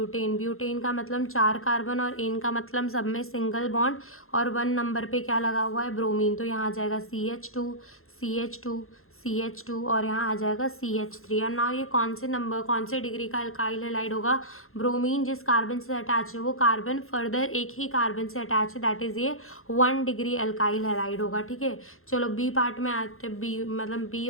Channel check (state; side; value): late; right; 0.62 ms